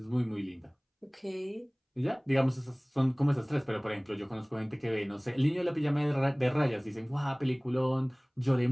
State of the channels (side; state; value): both; identical; correlation 1.00